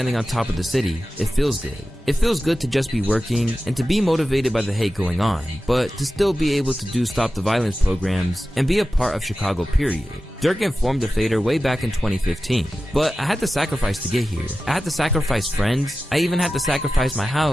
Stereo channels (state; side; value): normal; both; correlation 0.94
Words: on top of the city, it feels good. It feels good to just be working and to be motivated by the hate going on, but to still be able to do Stop the Violence programs and be a part of Chicago, period. Durk informed the Fader way back in 2015, but I had to sacrifice to get here. I had to sacrifice friends. I even had to sacrifice my